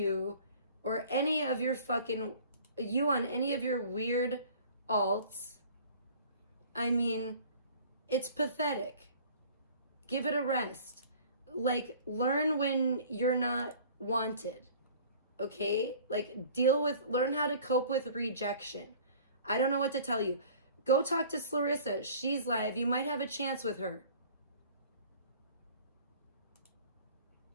or any of your fucking, you on any of your weird alts. I mean, it's pathetic. Give it a rest. Like, learn when you're not wanted. Okay? Like, learn how to cope with rejection. I don't know what to tell you. Go talk to Clarissa. She's live. You might have a chance with her.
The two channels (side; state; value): both; inverted; correlation -0.48